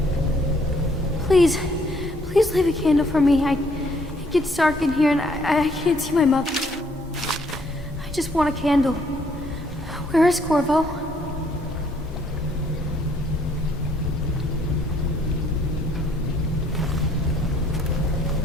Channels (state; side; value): normal; both; correlation 0.65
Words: Please leave a candle for me. It gets dark in here and I can't see my mother. I just want a candle. Where is Corvo?